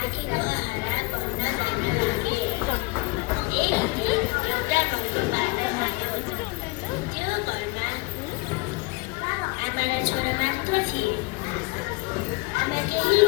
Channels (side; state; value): right; quieter; 26.1 dB